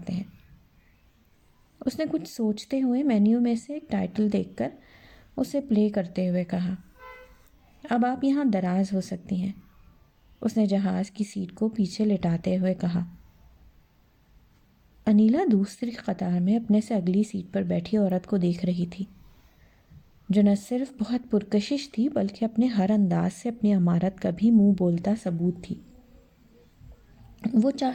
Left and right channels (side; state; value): both; identical; correlation 1.00